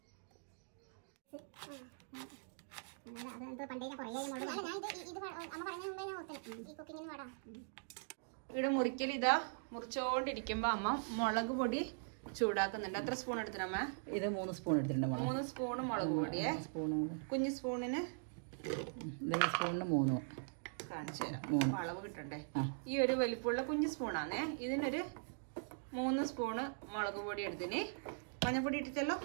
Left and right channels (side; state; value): left; silent; digital silence